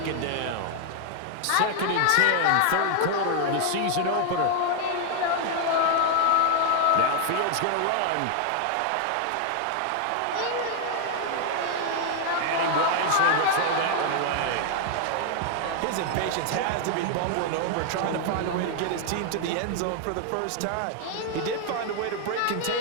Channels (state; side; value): different; both; correlation 0.00